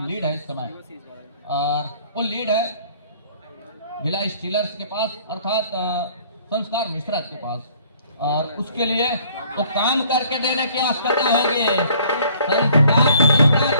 लीड है इस समय और वो लीड है भिलाई स्टीलर्स के पास अर्थात संस्कार मिश्रा के पास। और उसके लिए वो काम करके देने की आवश्यकता होगी। संस्कार मिश्रा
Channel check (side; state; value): both; inverted; correlation -0.58